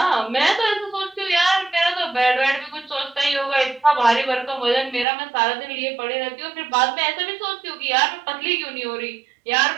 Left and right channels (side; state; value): left; drops out; at 5.1 s